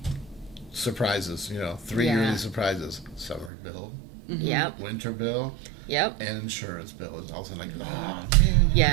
surprises, 3 yearly surprises. Summer bill, Yep. winter bill, Yep. and insurance bill. It's also like, oh man, you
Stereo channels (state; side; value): drops out; left; at 3.5 s